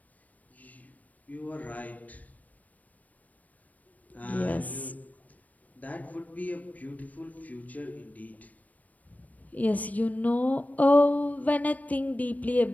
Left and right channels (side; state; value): right; late; 0.074 ms